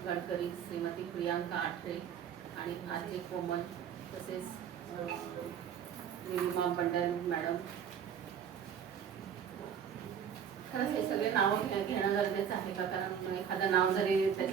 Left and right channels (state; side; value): quieter; left; 8.2 dB